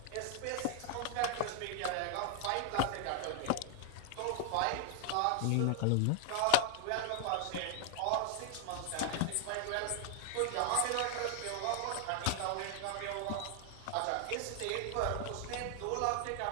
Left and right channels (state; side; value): different; both; correlation 0.00